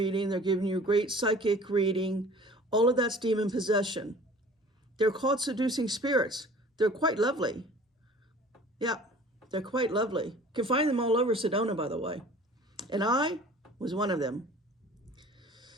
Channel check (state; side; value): normal; both; correlation 0.46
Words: they're giving you a great psychic reading, all of that's demon possession. They're called seducing spirits. They're quite lovely. Yeah, they're quite lovely. You can find them all over Sedona, by the way. And I was one of them.